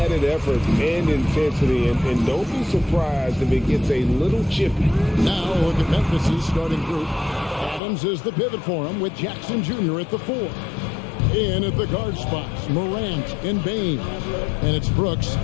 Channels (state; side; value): drops out; right; at 7.8 s